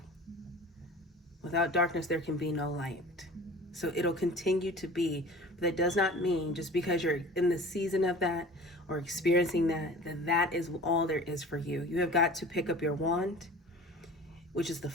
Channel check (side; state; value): both; normal; correlation 0.41